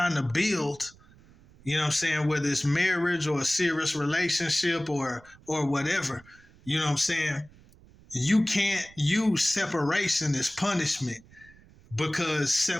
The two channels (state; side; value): noise; right; rumble, 25 dB below the sound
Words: to build, you know what I'm saying, whether it's marriage or a serious relationship or whatever, you know what I'm saying? You can't use separation as punishment, because